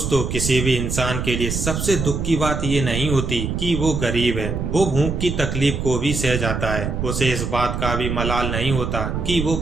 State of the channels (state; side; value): noise; right; rumble, 3 dB below the sound